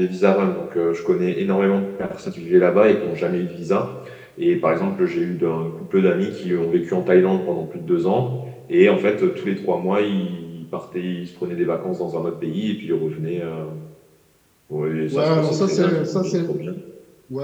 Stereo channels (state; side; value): identical; both; correlation 1.00